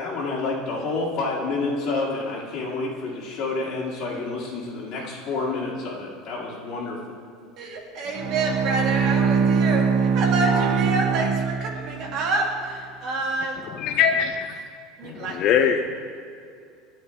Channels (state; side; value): normal; both; correlation 0.41